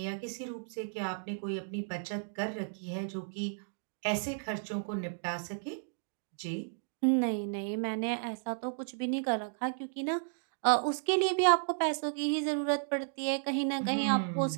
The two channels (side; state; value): left; silent; digital silence